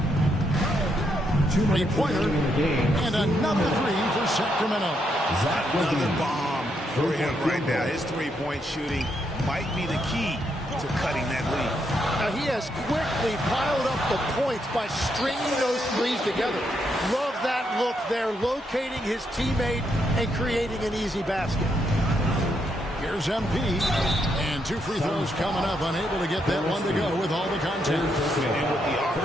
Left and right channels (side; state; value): both; normal; correlation 0.78